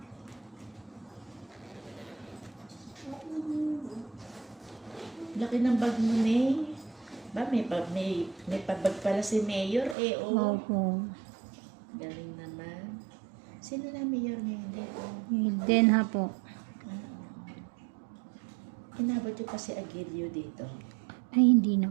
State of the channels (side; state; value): left; drops out; at 10.0 s